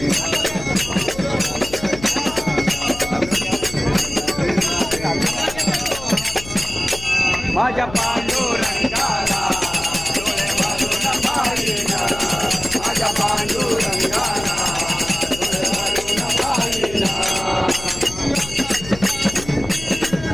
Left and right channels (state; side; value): noise; left; hum, 14 dB below the sound